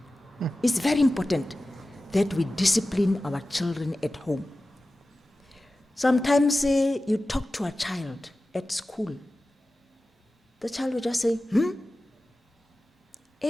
It's very important that we discipline our children at home. Sometimes you talk to a child at school. The child will just say,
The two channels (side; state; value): both; normal; correlation 0.95